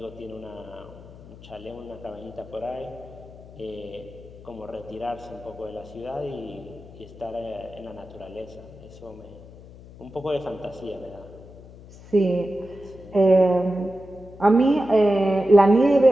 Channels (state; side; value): noise; left; hum, 18 dB below the sound